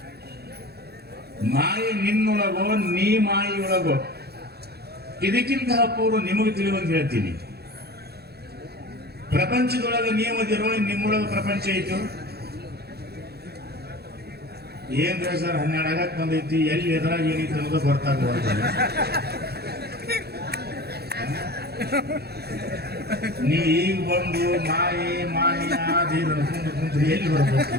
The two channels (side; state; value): left; late; 0.47 ms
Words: ಮಾಯಿ ನಿನ್ನೊಳಗೋ ನೀ ಮಾಯಿಯೊಳಗೋ, ಇದಕ್ಕಿಂತ ಪೂರ್ವ ನಿಮಗೆ ತಿಳಿಯುವಂಗೆ ಹೇಳ್ತೀನಿ. ಪ್ರಪಂಚದೊಳಗೆ ನೀವದಿರೋ, ನಿಮ್ಮೊಳಗೆ ಪ್ರಪಂಚ ಐತು. ಏನ್ರಿ ಸರ್ 12 ಆಗಕ್ಕೆ ಬಂದೈತಿ, ಎಲ್ಲಿ ಎದುರಾಗ ಏನೈತಿ ಅನ್ನೋದು ಗೊತ್ತಾಗಬಾರ್ದು. ನೀ ಈಗ ಬಂದು ಮಾಯಿ ಆದೀರ ಕುಂತ್ರಿ ಎಲ್ಲಿ ಬರ್ಬೇಕು?